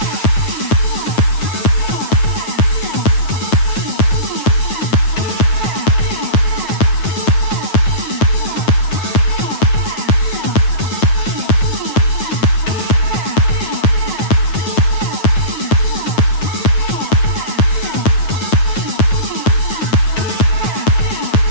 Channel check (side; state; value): right; late; 9.3 ms